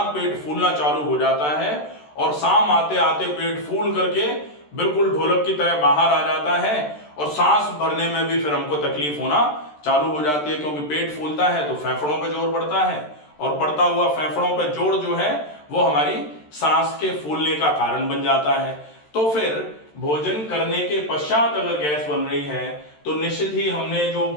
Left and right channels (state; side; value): late; right; 13 ms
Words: पेट फूलना चालू हो जाता है और शाम आते आते पेट फूल करके बिल्कुल ढोलक की तरह बाहर आ जाता है और सांस भरने में भी फिर हमको तकलीफ होना चालू हो जाती है, क्योंकि पेट फूलता है तो फेफड़ों पे जोर पड़ता है और पड़ता हुआ फेफड़ों पे जोर जो है वो हमारी सांस के फूलने का कारण बन जाता है। तो फिर भोजन करने के पश्चात अगर गैस बन रही है तो निश्चित ही हमने जो